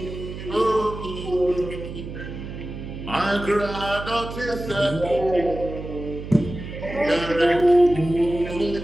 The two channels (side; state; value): right; noise; hum, 9 dB below the sound